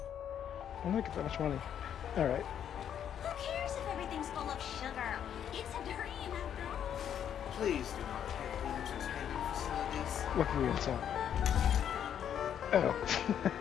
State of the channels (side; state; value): right; quieter; 9.3 dB